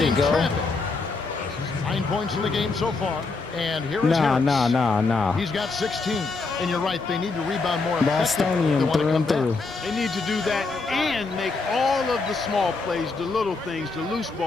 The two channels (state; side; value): quieter; right; 4.0 dB